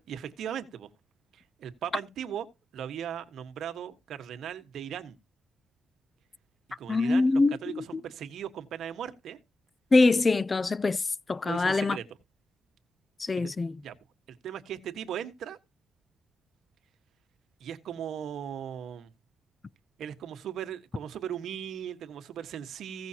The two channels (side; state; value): both; normal; correlation 0.90